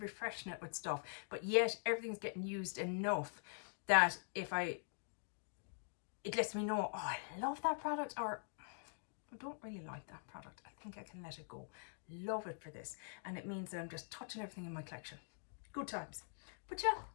it with stuff, but yet everything's getting used enough that it lets me know, oh, I love that product, or I don't really like that product. I think I can let it go. Love it for this. And it means that I'm just touching everything in my collection. Good times. But yeah,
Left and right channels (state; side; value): silent; right; digital silence